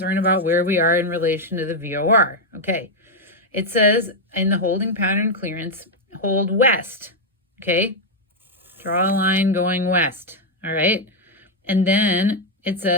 about where we are in relation to the VOR. Okay, it says in the holding pattern clearance, hold west. Okay, draw a line going west. All right, and then it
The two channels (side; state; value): both; normal; correlation 0.01